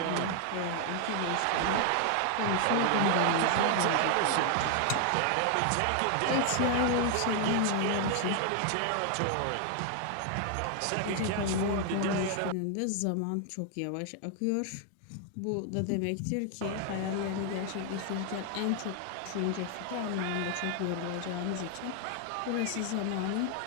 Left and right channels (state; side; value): different; both; correlation 0.00